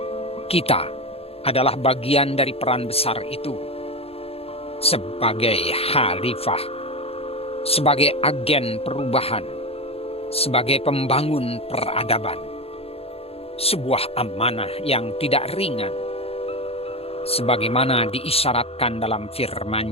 Kita adalah bagian dari peran besar itu, sebagai khalifah, sebagai agen perubahan, sebagai pembangun peradaban. Sebuah amanah yang tidak ringan, sebagaimana diisyaratkan dalam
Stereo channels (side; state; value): right; late; 0.29 ms